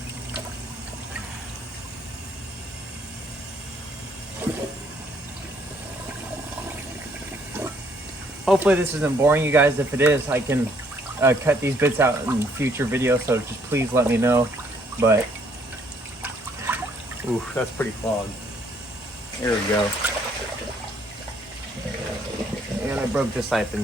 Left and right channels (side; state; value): both; normal; correlation 0.66